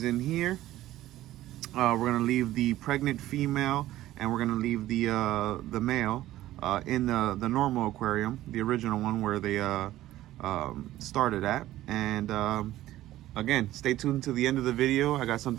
in here. We're gonna leave the pregnant female and we're gonna leave the male in the normal aquarium, the original one where they started at. And again, stay tuned to the end of the video. I got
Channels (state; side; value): quieter; left; 14.8 dB